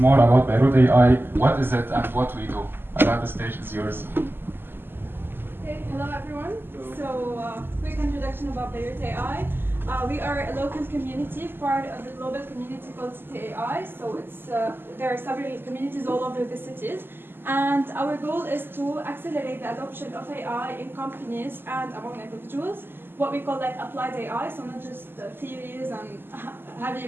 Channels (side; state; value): left; late; 0.10 ms